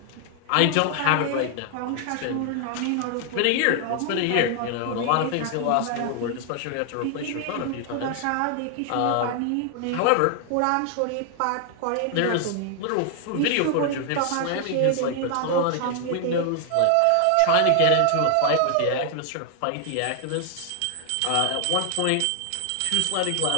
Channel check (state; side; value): different; both; correlation 0.00